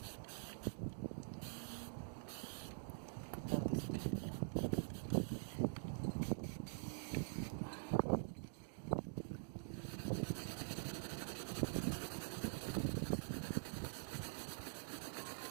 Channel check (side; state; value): left; silent; digital silence